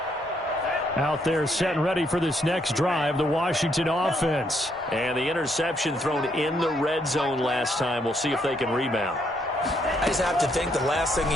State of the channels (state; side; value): normal; both; correlation 0.73